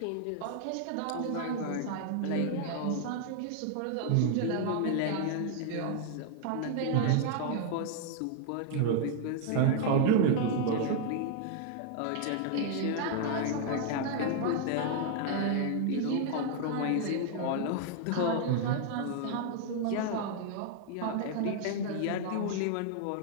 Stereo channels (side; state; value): both; different; correlation 0.00